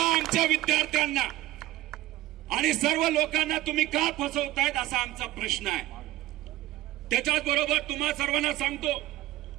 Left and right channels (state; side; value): quieter; left; 16.0 dB